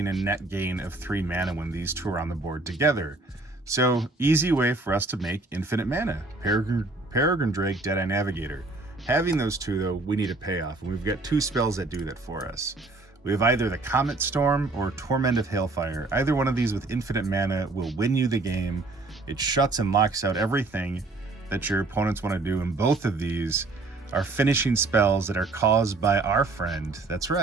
a net gain of 3 mana when these two are on the board together. So easy way for us to make infinite mana. Peregrine Drake, Deadeye Navigator. Having those two though, we need a payoff, and we've got 2 spells that do that for us. We have either the Comet Storm or Torment of Hailfire. Either one of these with infinite mana will win you the game. It shuts and locks out everything that your opponents want to do, and both of these are finishing spells that are caused by our friend, that's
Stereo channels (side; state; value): left; quieter; 3.3 dB